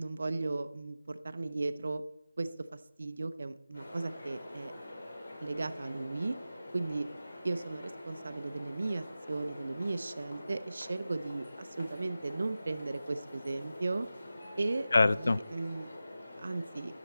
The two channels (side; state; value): both; inverted; correlation -0.94